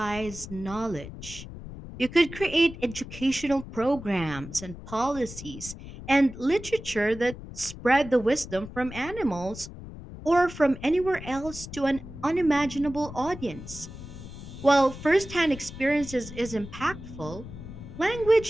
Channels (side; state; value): left; noise; rumble, 13 dB below the sound